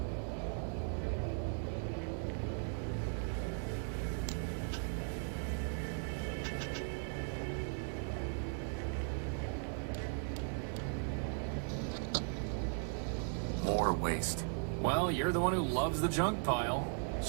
More waste. Well, you're the one who loves the junk pile.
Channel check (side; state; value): left; silent; 53 dB below the other